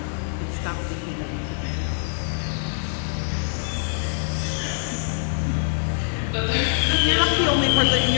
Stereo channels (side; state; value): right; silent; digital silence